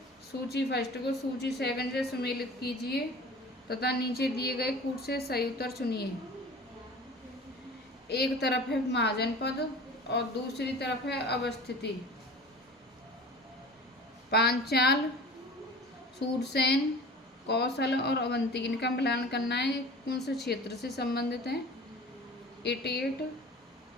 सूची फर्स्ट को सूची सेकंड से सुमेलित कीजिए तथा नीचे दिए गए कूट से सही उत्तर चुनिए। एक तरफ है महाजनपद और दूसरी तरफ है अवस्थिति। पांचाल, सूरसेन, कौशल और अवंती, इनका मिलान करना है कौन से क्षेत्र से संबंधित है।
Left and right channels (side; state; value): both; normal; correlation 0.40